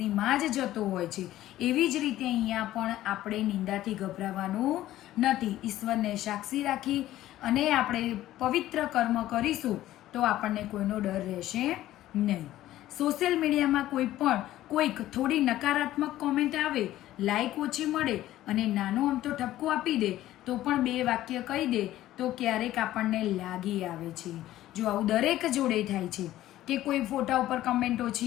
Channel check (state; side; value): quieter; right; 14.3 dB